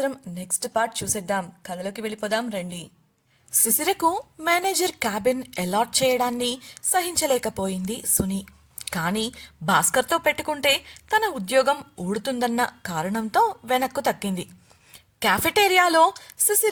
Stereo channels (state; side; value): identical; both; correlation 1.00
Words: నెక్స్ట్ పార్ట్ చూసేద్దాం. కథలోకి వెళ్ళిపోదాం రండి. శిశిరకు మేనేజర్ క్యాబిన్ అలాట్ చేయడాన్ని సహించలేకపోయింది సుని. కానీ భాస్కర్తో పెట్టుకుంటే తన ఉద్యోగం ఊడుతుందన్న కారణంతో వెనక్కు తక్కింది. క్యాఫెటేరియాలో